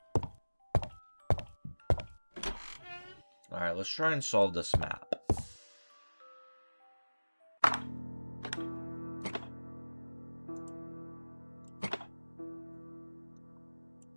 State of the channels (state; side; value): inverted; both; correlation -1.00